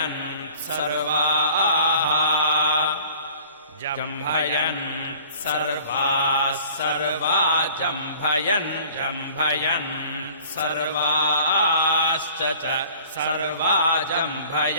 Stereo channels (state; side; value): inverted; both; correlation -0.49